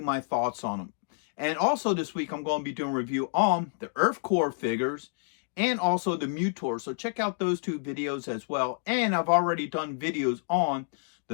my thoughts on them. And also this week I'm going to be doing a review on the Earth Core figures and also the Mutor. So check out those 2 videos as well. And I've already done videos on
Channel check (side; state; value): right; silent; digital silence